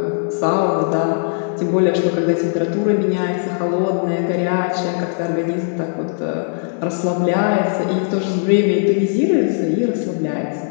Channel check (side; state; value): right; silent; 67 dB below the other